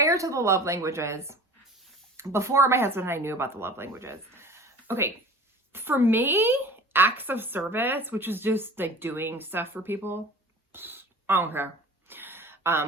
to the love languages, before my husband and I knew about the love languages, okay, for me, acts of service, which is just like doing stuff for people, I don't care.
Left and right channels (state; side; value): normal; both; correlation 0.42